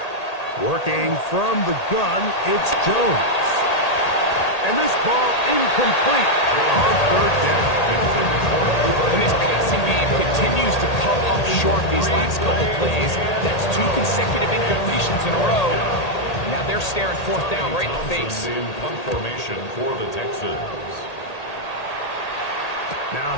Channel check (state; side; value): late; right; 1.8 ms